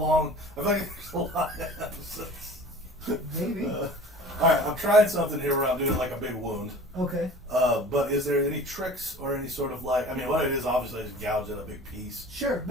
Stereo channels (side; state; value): both; normal; correlation 0.43